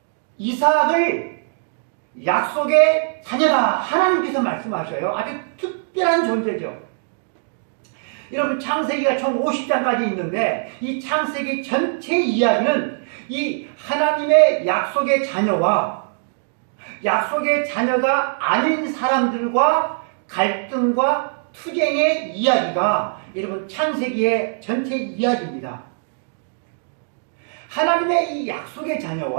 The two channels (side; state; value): left; silent; digital silence